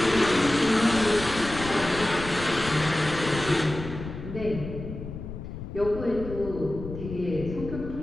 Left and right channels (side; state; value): left; noise; rumble, 10 dB below the sound